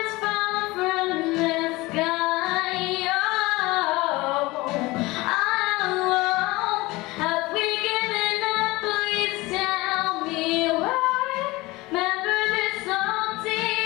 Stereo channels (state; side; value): quieter; right; 21.2 dB